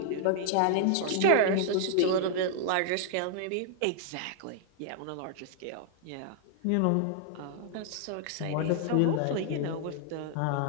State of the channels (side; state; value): both; different; correlation -0.01